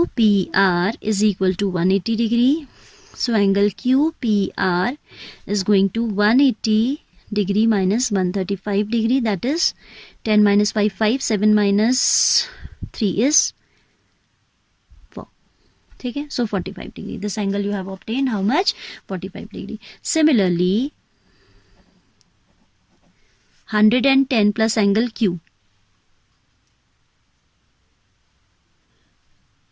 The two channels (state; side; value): identical; both; correlation 1.00